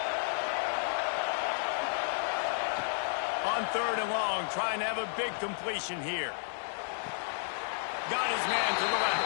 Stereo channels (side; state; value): right; silent; digital silence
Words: On third and long, trying to have a big completion here. Got his man to the